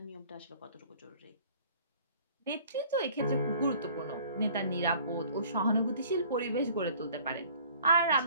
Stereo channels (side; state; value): both; inverted; correlation -0.52